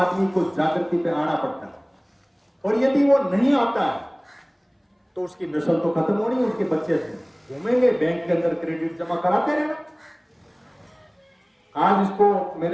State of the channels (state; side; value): identical; both; correlation 1.00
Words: को जागृति पे आना पड़ता है, और यदि वो नहीं आता है तो उसकी नस्ल तो खत्म होनी, उसके बच्चे घूमेंगे बैंक के अंदर क्रेडिट जमा कराते रहना। आज इसको